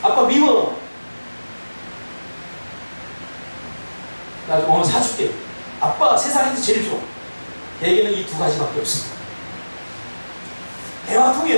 아빠 미워. 나 사줄게. 아빠 세상에서 제일 좋아. 얘기는 이 두 가지밖에 없어. 대화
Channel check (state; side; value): inverted; both; correlation -1.00